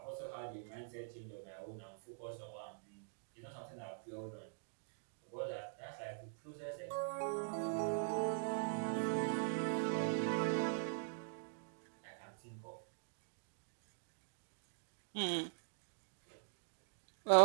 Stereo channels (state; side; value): silent; left; digital silence